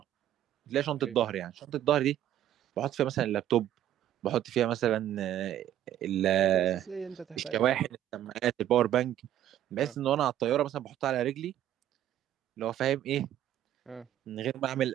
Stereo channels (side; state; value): left; quieter; 11.8 dB